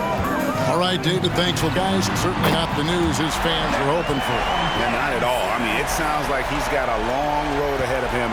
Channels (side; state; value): both; identical; correlation 1.00